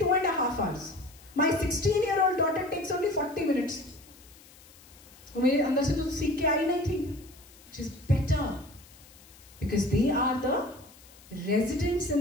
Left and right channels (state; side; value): noise; left; hiss, 24 dB below the sound